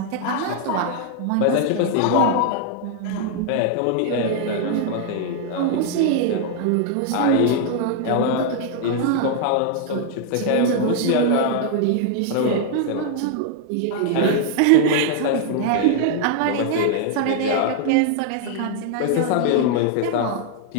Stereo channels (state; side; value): different; both; correlation 0.00